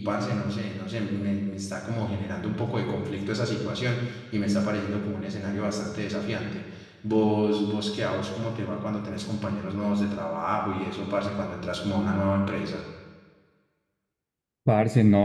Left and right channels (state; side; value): identical; both; correlation 1.00